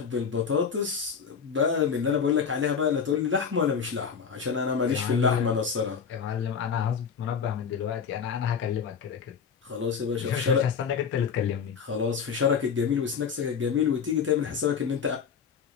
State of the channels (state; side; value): quieter; right; 6.6 dB